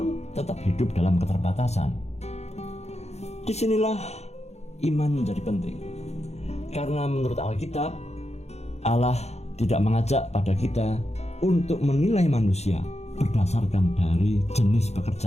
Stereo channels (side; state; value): right; late; 0.31 ms